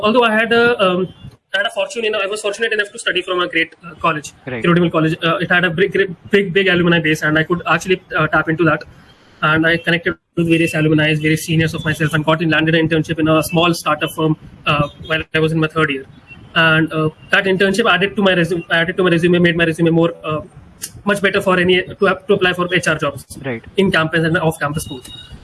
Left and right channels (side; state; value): both; identical; correlation 1.00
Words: I had a fortune, I was fortunate enough to study from a great college, Right. Kirodimal College. It had a big alumni base, and I could actually tap into that. And I connected with various alumni, various seniors of myself, and landed an internship in a small startup firm while I was in my third year. And that internship added to my resume, made my resume more much better for to apply for HR jobs, Right. in campus and off campus schools.